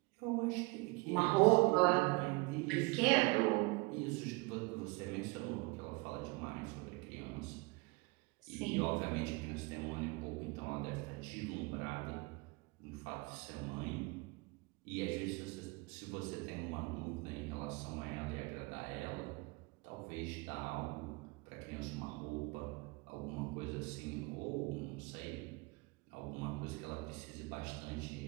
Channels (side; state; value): left; quieter; 25.9 dB